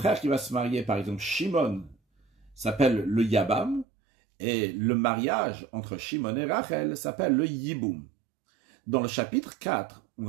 qui va se marier, par exemple Shimon, s'appelle le Yabam, et le mariage entre Shimon et Rachel s'appelle le Yiboum. Dans le chapitre 4, on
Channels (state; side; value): drops out; left; at 3.9 s